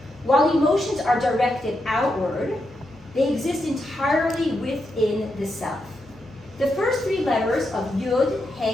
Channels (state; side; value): normal; both; correlation 0.84